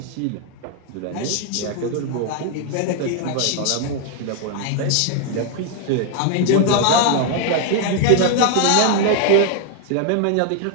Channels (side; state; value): both; different; correlation 0.00